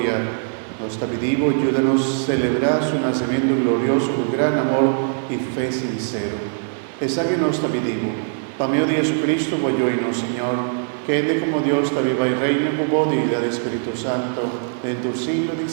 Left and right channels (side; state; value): left; silent; digital silence